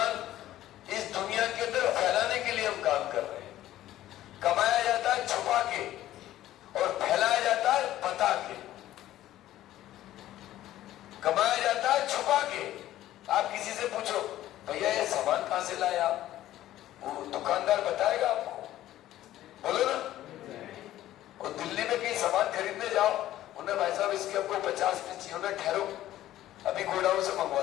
लाए आप? वो दुकानदार बताएगा आपको, बोलो ना। और दिल्ली में कहीं सामान खरीदने जाओ, उन्हें भाई साहब इसके हमको 50 पीस चाहिए, उन्हें ठहरो अभी गोडाउन से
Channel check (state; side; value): quieter; right; 13.8 dB